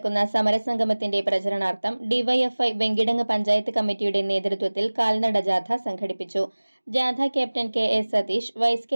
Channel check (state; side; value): inverted; both; correlation -1.00